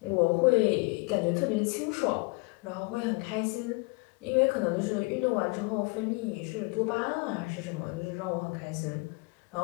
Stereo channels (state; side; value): quieter; right; 29.0 dB